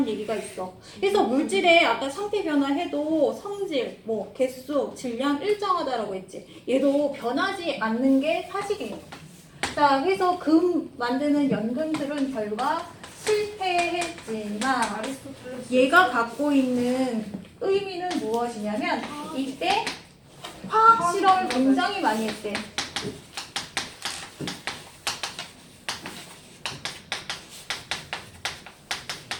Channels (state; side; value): identical; both; correlation 1.00